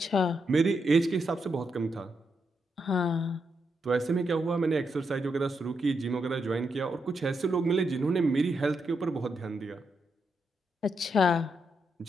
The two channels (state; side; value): normal; both; correlation 0.82